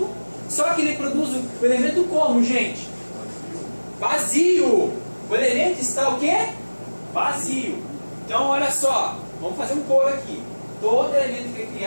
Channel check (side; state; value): both; inverted; correlation -1.00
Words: só que ele produz o elemento como, gente? Vazio. O elemento está o quê? Vazio. Então olha só, vamos fazer um coro aqui. Todo elemento que é